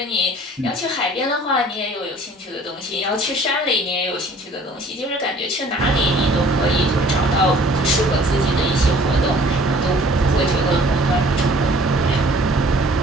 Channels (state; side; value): normal; both; correlation 0.53